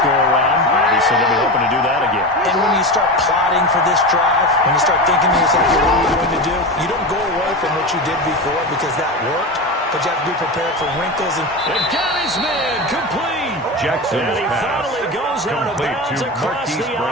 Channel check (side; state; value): both; normal; correlation 0.22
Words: Obviously, they'll be hoping to do that again. And when you start plotting for this drive, when you start thinking to yourself, what are you going to do? You don't go away from what you did before because that worked, but you have to be prepared for wrinkles. And got his man complete. Jackson's and he pass finally goes out of complete bounds to across Marquise the